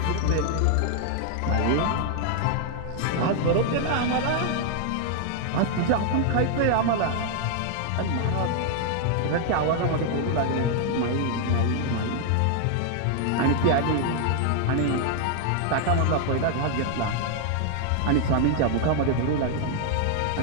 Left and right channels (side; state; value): both; different; correlation 0.00